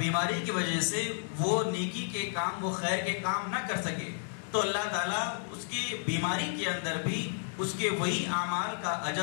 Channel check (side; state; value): right; silent; digital silence